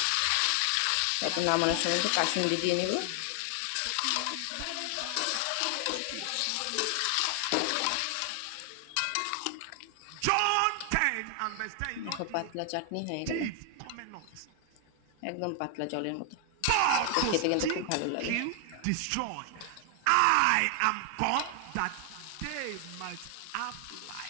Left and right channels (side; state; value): both; different; correlation 0.00